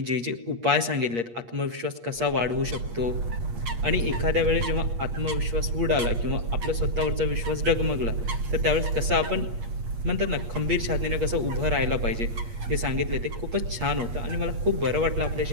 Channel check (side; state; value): left; late; 8.5 ms